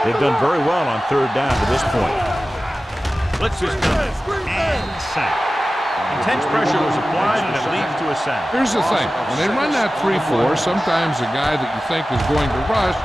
They've done very well on third down to this point. Blitz is coming and sack. Intense pressure was applied and it leads to a sack. Here's the thing. When they run that 3-4, sometimes the guy that you think is going to rush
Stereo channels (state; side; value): normal; both; correlation 0.95